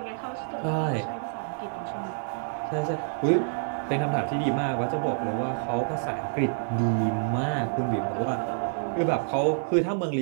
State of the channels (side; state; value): left; silent; digital silence